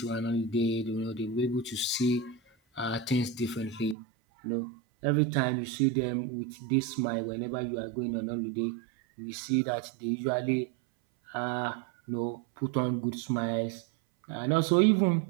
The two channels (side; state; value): left; drops out; at 4.0 s